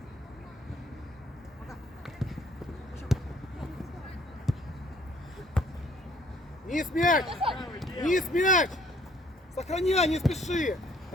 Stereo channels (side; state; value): both; normal; correlation 0.61